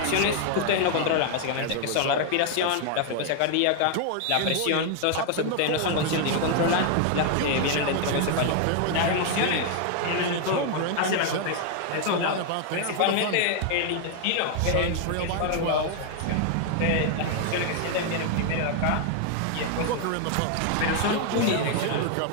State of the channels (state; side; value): different; both; correlation 0.00